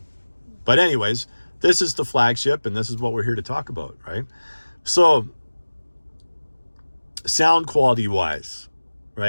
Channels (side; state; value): both; inverted; correlation -1.00